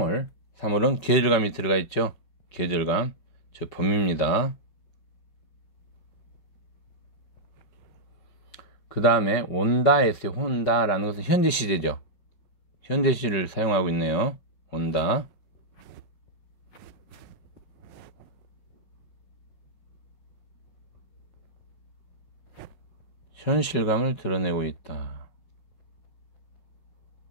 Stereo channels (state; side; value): late; right; 5.5 ms